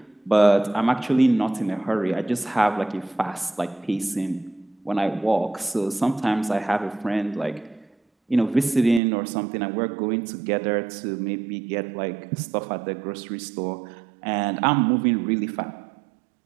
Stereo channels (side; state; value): left; drops out; at 9.0 s